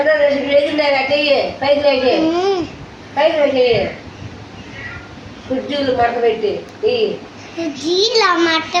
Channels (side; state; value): both; identical; correlation 1.00